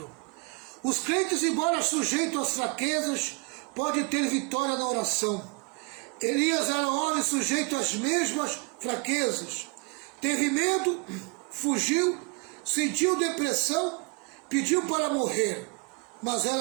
Os crentes, embora sujeitos às fraquezas, podem ter vitória na oração. Elias era um homem sujeito às mesmas fraquezas. Teve medo, fugiu, sentiu depressão, pediu para morrer, mas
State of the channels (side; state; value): left; quieter; 31.8 dB